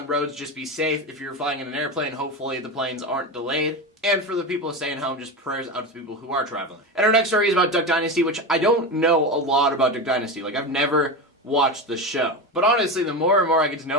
roads, just be safe. If you're flying in an airplane, hopefully the planes aren't delayed. And for the people staying home, just prayers out to people who are traveling. And our next story is about Duck Dynasty, which I don't know a lot about Duck Dynasty. Like, I've never watched the show. But honestly, the more and more I get to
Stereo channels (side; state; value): both; normal; correlation 0.20